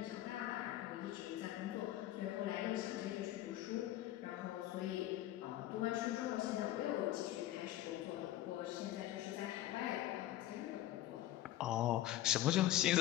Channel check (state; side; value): quieter; right; 14.0 dB